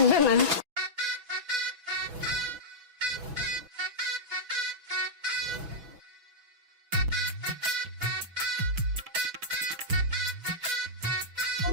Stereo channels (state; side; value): late; left; 6.1 ms